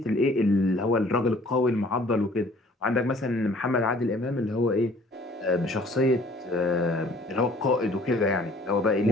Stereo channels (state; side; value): normal; both; correlation 0.55